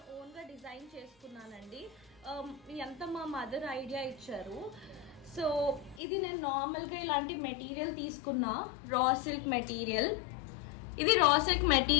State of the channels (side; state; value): right; drops out; at 6.0 s